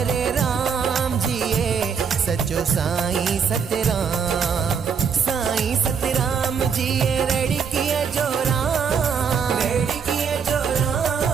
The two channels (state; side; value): quieter; left; 6.5 dB